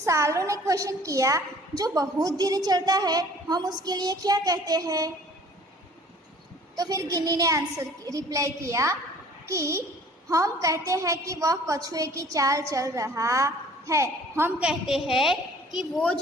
ने क्वेश्चन किया जो बहुत धीरे चलता है हम उसके लिए क्या कहते हैं? तो फिर गिन्नी ने आंसर रिप्लाई किया कि हम कहते हैं कि वह कछुए की चाल चल रहा है। हम कहते हैं कि वो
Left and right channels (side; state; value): both; normal; correlation 0.52